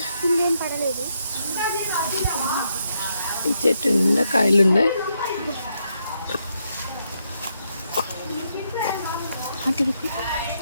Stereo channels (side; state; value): both; inverted; correlation -0.79